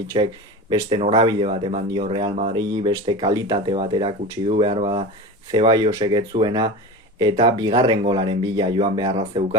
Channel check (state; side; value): normal; both; correlation 0.29